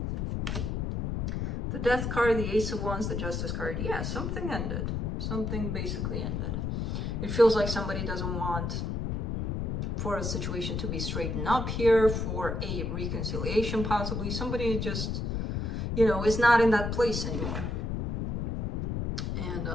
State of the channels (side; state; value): left; noise; rumble, 1 dB below the sound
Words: The Death card, the Ace of Wands, the Justice card. Yeah, something ended. Something basically ended. It feels like somebody doesn't want for a situation to be straightened up here, for a reconciliation possibly. Somebody just, you know, is not in that place anymore. And